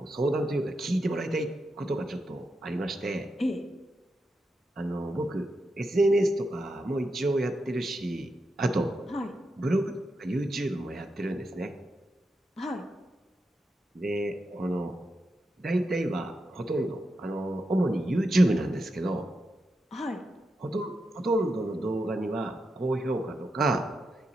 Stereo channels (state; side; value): normal; both; correlation 0.86